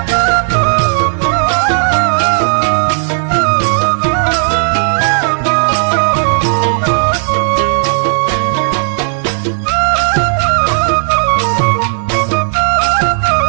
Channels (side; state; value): left; silent; digital silence